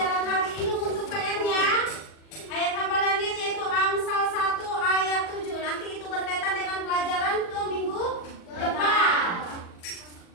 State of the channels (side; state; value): right; late; 40 ms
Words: hari ini. Untuk PR-nya, ayat hafalannya yaitu Amsal 1 ayat 7. Nanti itu berkaitan dengan pelajaran ke minggu depan.